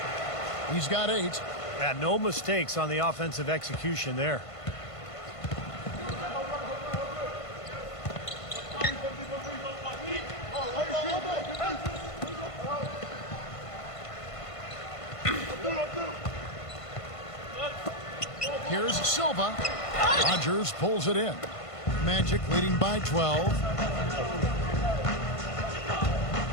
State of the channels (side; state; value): right; late; 1.5 ms